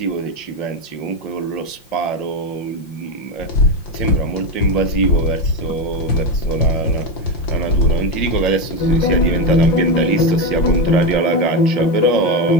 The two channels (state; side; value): late; right; 5.7 ms